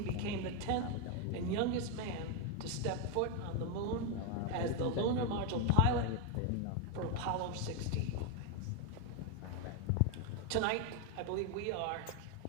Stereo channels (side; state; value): both; different; correlation 0.01